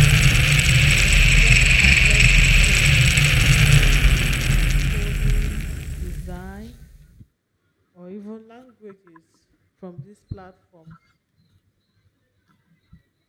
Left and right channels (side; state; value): both; identical; correlation 1.00